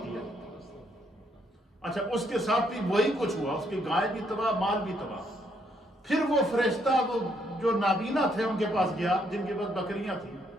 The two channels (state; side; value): normal; both; correlation 0.72